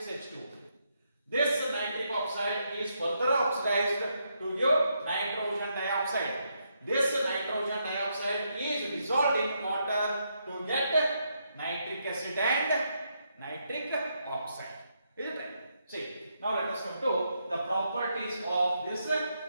This nitric oxide is further oxidized to give nitrogen dioxide. This nitrogen dioxide is dissolved in water to get nitric acid and nitric oxide. Is it right? See, now let us come to the properties of this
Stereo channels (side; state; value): both; inverted; correlation -0.79